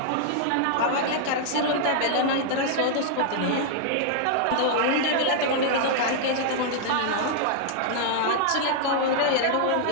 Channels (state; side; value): different; both; correlation -0.01